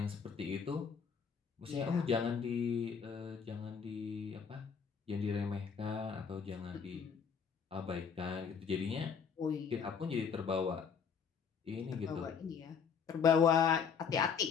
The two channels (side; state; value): right; quieter; 6.5 dB